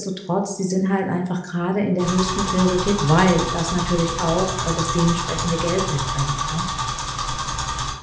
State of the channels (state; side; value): identical; both; correlation 1.00